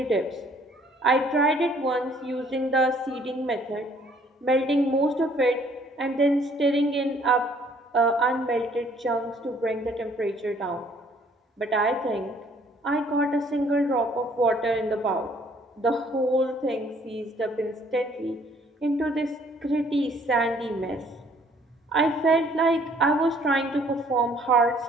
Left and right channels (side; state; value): both; normal; correlation 0.61